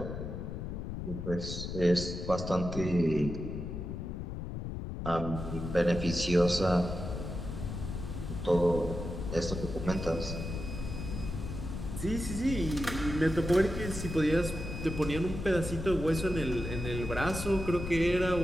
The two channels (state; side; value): noise; left; rumble, 6 dB below the sound